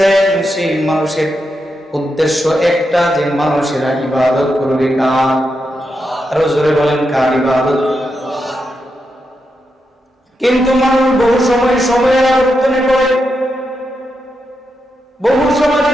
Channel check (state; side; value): normal; both; correlation 0.85